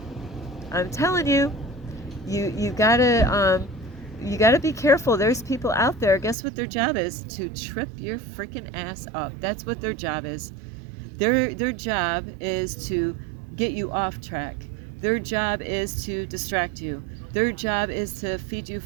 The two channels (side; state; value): left; drops out; at 6.4 s